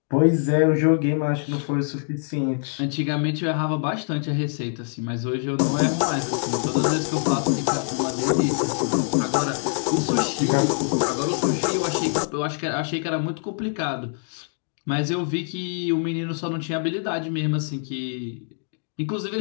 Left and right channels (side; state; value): right; silent; 62 dB below the other